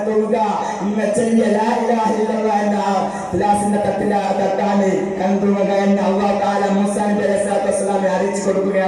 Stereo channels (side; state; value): both; identical; correlation 1.00